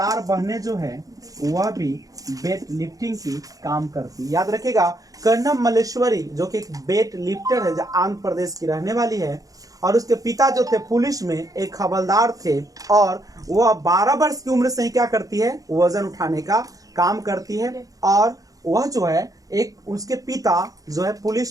बहनें जो है वह भी वेट लिफ्टिंग की काम करती है, याद रखिएगा। कर्णम मलेश्वरी जो कि एक वेट लिफ्टर है, जो आंध्र प्रदेश की रहने वाली है, और उसके पिता जो थे पुलिस में एक हवलदार थे, और वह 12 वर्ष की उम्र से ही क्या करती है, वजन उठाने का काम करती है। और वह जो है एक उसके पिता जो है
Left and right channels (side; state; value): left; late; 0.17 ms